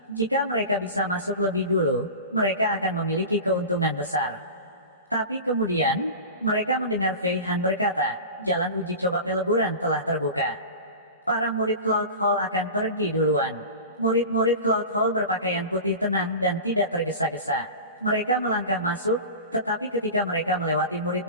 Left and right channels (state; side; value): inverted; both; correlation -0.32